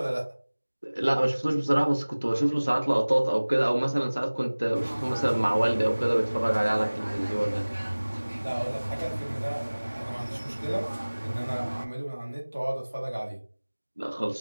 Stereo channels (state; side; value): inverted; both; correlation -1.00